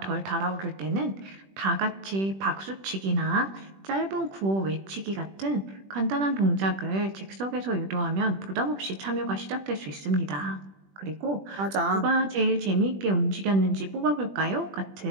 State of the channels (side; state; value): left; late; 21 ms